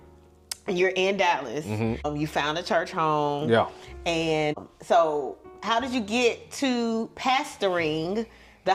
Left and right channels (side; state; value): both; identical; correlation 1.00